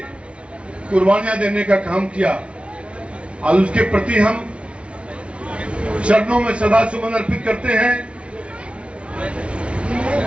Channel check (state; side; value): late; left; 0.060 ms